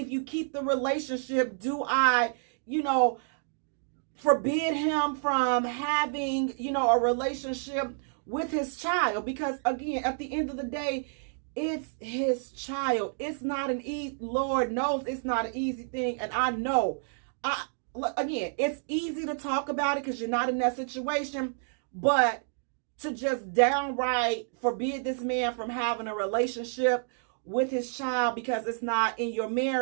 you keep the relationship, do I, forbid him from having, a relationship with his child? Because again, at the end of the day, it's his child. It's not Lord knows it's not an easy thing. And I know, again, it's easy to talk about it because you're not in that situation, but to just downright forbid this man from having a relationship with his child because it's not in your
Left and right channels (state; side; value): silent; left; digital silence